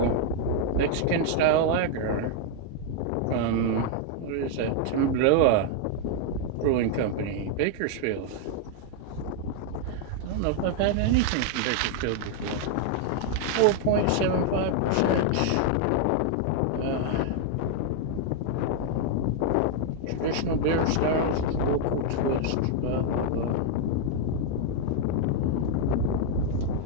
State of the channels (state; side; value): different; both; correlation 0.00